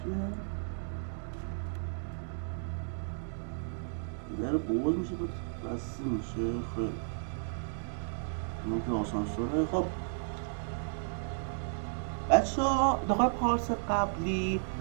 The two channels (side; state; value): left; silent; digital silence